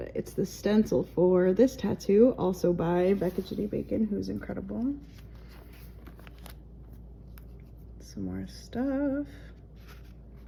it's the stencil for this tattoo, also by Becca Ginny Bacon, who's incredible. Some more stuff.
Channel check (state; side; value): identical; both; correlation 1.00